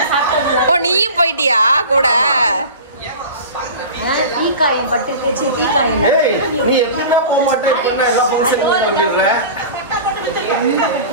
ஓ, நீயும் போயிட்டியா கூட?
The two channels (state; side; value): inverted; both; correlation -0.34